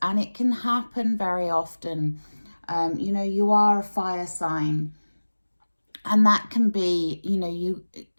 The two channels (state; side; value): inverted; both; correlation -1.00